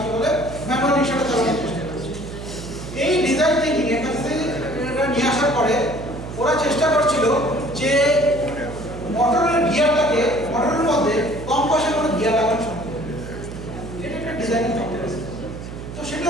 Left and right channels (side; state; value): right; noise; hum, 10 dB below the sound